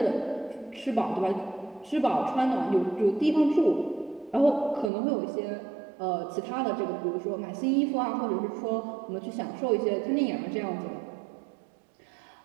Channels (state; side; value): drops out; left; at 4.9 s